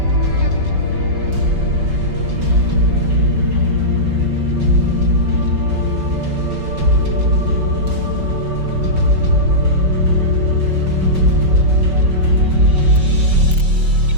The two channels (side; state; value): left; late; 5.3 ms